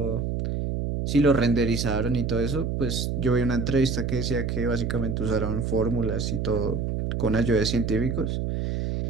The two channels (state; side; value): noise; right; hum, 1 dB below the sound